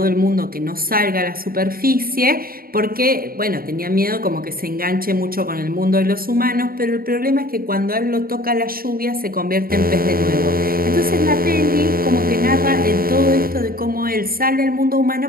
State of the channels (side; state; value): left; late; 0.43 ms